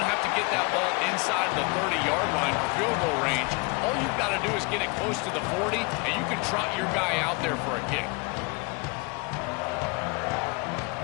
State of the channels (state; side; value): quieter; right; 29.5 dB